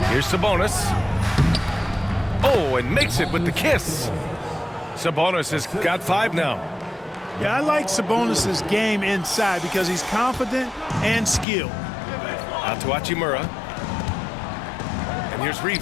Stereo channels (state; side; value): drops out; right; at 11.5 s